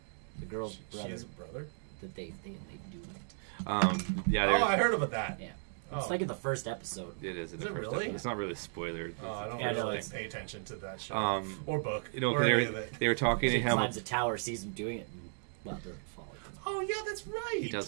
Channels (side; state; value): left; silent; digital silence